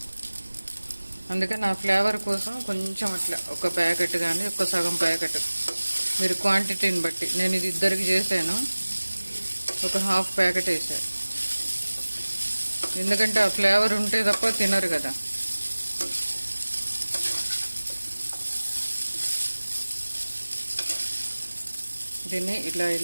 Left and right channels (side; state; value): both; inverted; correlation -1.00